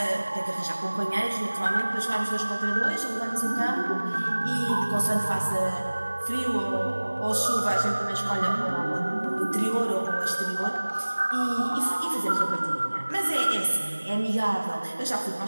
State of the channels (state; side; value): inverted; both; correlation -1.00